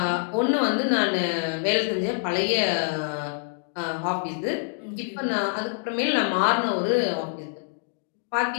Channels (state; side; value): silent; right; digital silence